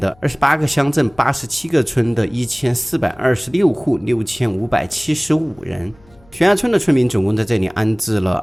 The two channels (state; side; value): noise; left; hum, 28 dB below the sound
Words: 28个乡镇、87个村的1426户，6575人。悬崖村的村民总共在这里安置了